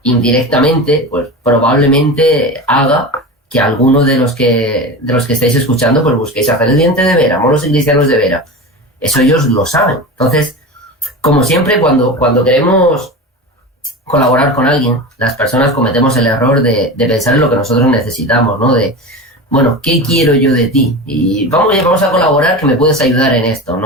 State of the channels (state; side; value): normal; both; correlation 0.27